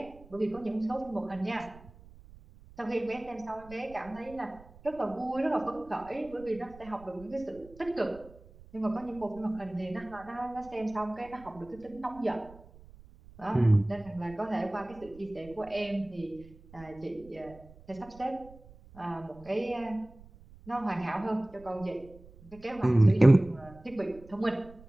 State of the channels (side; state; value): right; noise; rumble, 21 dB below the sound